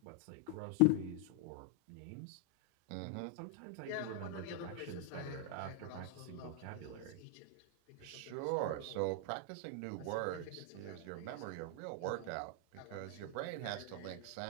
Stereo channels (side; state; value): both; different; correlation -0.01